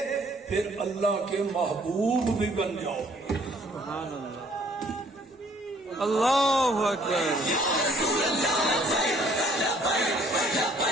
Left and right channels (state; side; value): normal; both; correlation 0.60